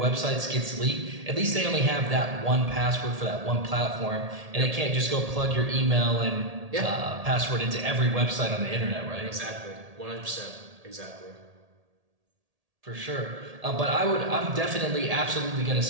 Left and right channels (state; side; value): late; left; 1.8 ms